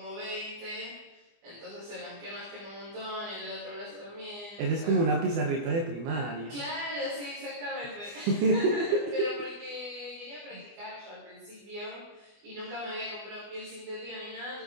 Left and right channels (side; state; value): left; late; 24 ms